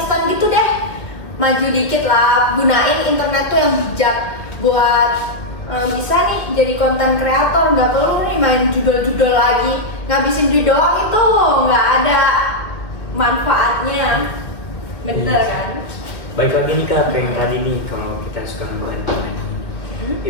gitu deh. Maju dikit lah, gunain internet tuh yang bijak buat bisa nih jadi konten kreator, nggak perlu nih main judul-judul lagi, ngabisin duit doang itu nggak ada manfaatnya, bener kan? Baik lagi nih Kak, yang tadi nih kalau kita suka ngebantu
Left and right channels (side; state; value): right; late; 2.0 ms